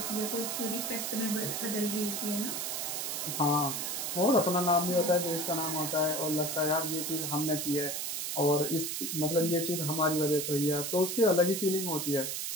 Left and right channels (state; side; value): noise; right; hiss, 2 dB below the sound